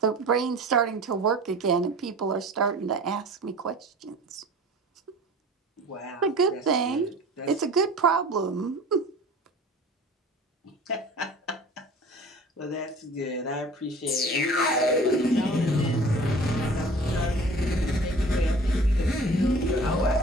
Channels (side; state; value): both; normal; correlation 0.44